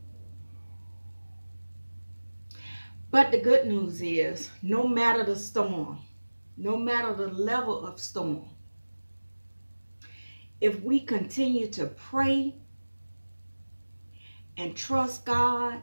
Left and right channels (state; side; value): inverted; both; correlation -1.00